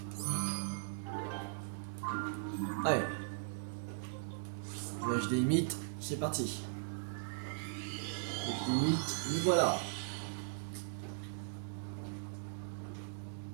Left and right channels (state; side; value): silent; left; digital silence